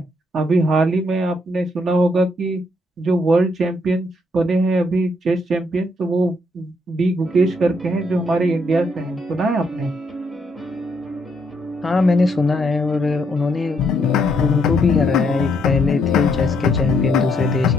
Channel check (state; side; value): normal; both; correlation 0.73